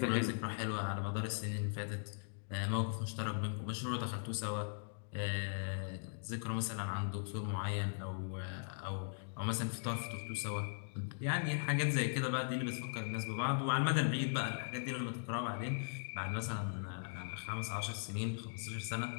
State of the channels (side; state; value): right; silent; digital silence